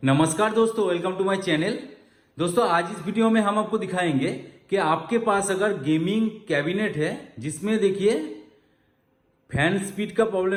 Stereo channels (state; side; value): identical; both; correlation 1.00